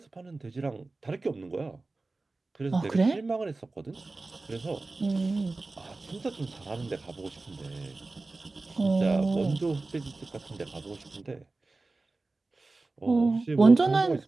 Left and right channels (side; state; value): left; quieter; 3.4 dB